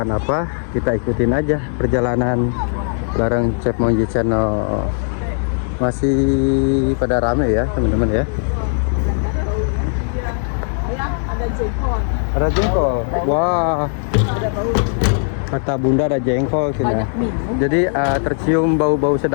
apa, kita ikutin aja perjalanan bareng Chef Monji Channel. Masih pada rame ya teman-teman ya. Ada jengkol. Ada jengkol. Wah. Ada bau. Kata Bunda ada jengkol sini. Banyak minum. Jadi tercium bau-bau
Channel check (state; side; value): silent; right; digital silence